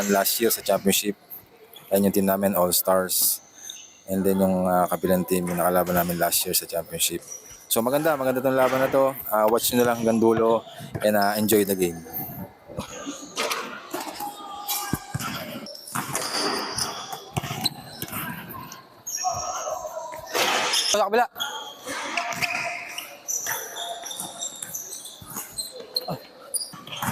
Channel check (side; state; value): both; identical; correlation 1.00